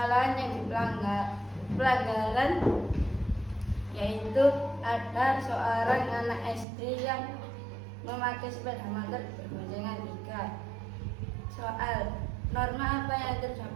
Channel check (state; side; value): drops out; left; at 6.7 s